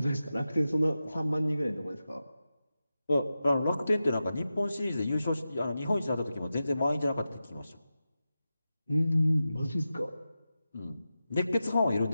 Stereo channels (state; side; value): inverted; both; correlation -0.92